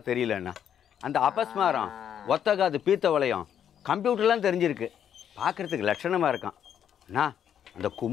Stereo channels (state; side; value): quieter; right; 9.1 dB